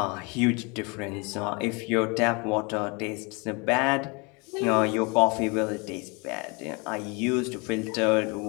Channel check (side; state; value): right; quieter; 30.1 dB